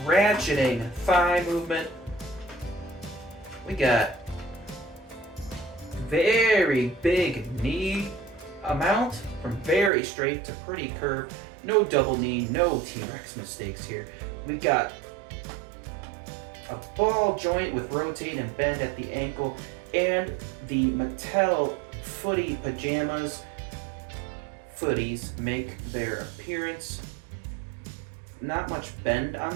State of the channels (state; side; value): drops out; left; at 9.9 s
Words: ratcheting thigh movement. We got very big knee amount from very straight to pretty curved. No double knee, no T-Rex mistakes here. We got a ball joint with rotate and bend at the ankle, and the Mattel footy pajamas. Footies make their appearance. Not much bend